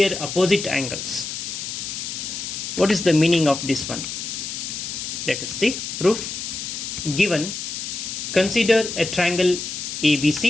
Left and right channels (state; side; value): noise; left; hiss, 6 dB below the sound